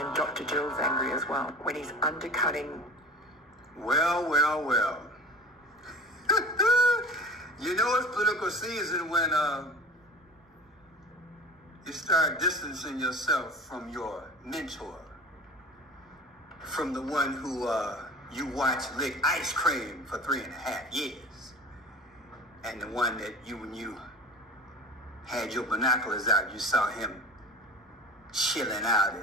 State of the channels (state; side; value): normal; both; correlation 0.37